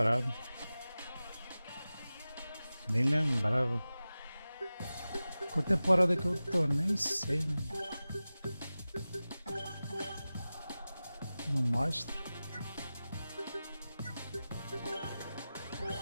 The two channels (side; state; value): both; inverted; correlation -0.96